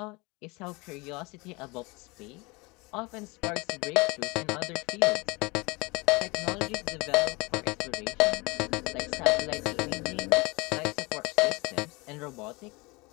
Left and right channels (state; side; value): quieter; right; 25.6 dB